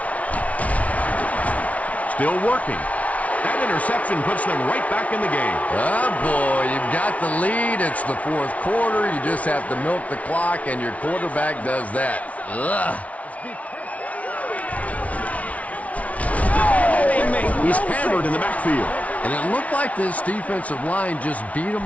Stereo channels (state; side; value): late; right; 0.067 ms